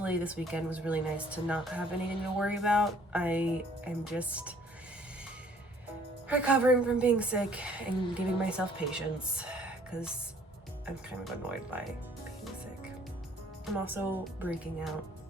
this weekend was really nice to not have anything to worry about. I am just recovering from being sick and giving myself patience, because I'm kind of annoyed by being sick. I'm also breaking out.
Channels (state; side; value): normal; both; correlation 0.58